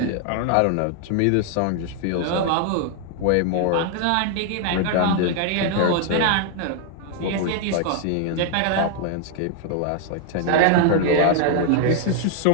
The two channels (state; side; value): different; both; correlation 0.00